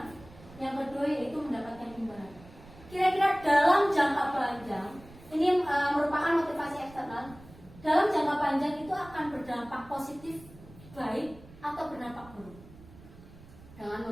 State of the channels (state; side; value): noise; right; rumble, 20 dB below the sound